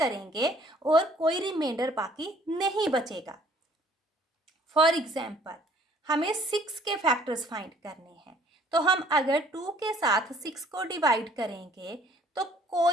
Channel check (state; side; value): normal; both; correlation 0.58